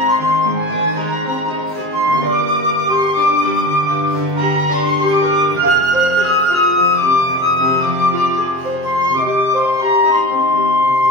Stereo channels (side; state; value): left; late; 7.7 ms